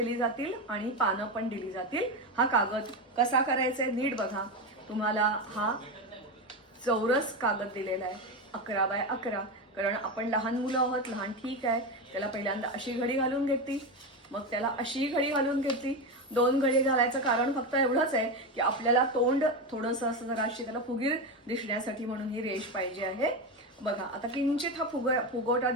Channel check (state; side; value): normal; both; correlation 0.15